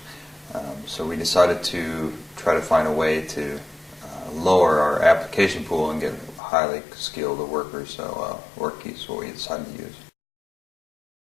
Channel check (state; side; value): drops out; right; at 6.4 s